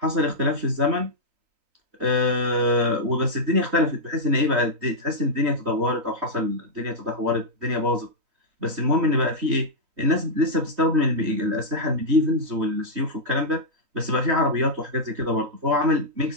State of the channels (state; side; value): late; left; 3.9 ms